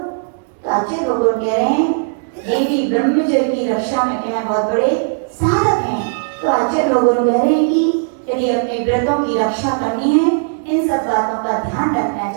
तो अच्छे लोग कह रहे हैं ये भी ब्रह्मचर्य की रक्षा में क्या है, बहुत बड़े साधक हैं। तो अच्छे लोगों कह रहे हैं कि यदि अपने व्रतों की रक्षा करनी है इन सब बातों का ध्यान रखना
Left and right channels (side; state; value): left; silent; digital silence